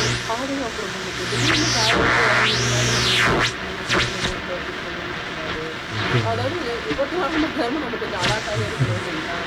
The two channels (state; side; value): identical; both; correlation 1.00